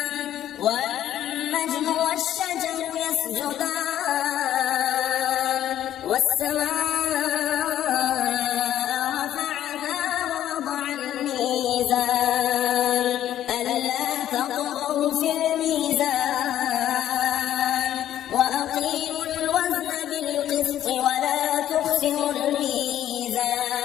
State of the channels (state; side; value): quieter; right; 11.8 dB